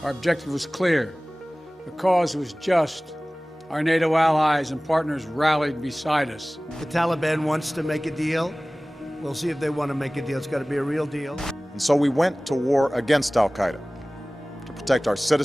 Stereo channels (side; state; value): both; normal; correlation 0.98